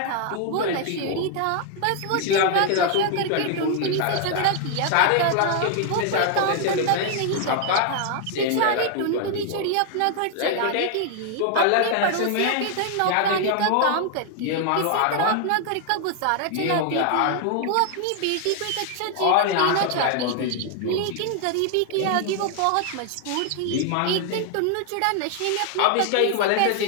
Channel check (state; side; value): different; both; correlation 0.00